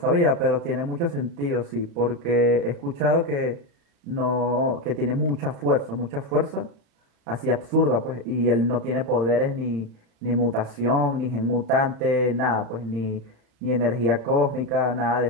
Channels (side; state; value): left; late; 35 ms